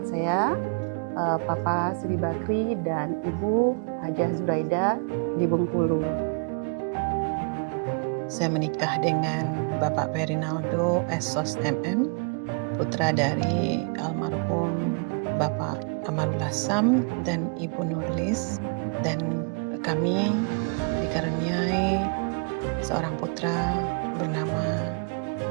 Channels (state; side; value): quieter; left; 37.5 dB